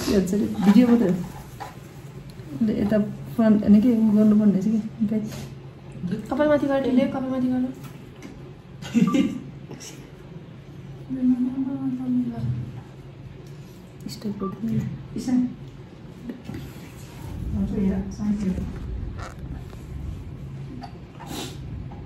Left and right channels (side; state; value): both; identical; correlation 1.00